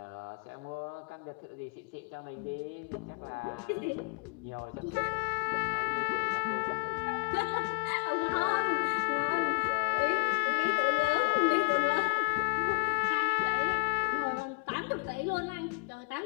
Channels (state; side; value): quieter; right; 31.8 dB